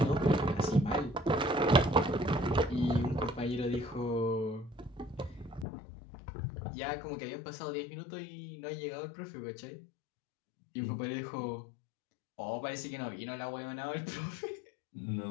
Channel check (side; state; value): right; drops out; at 5.7 s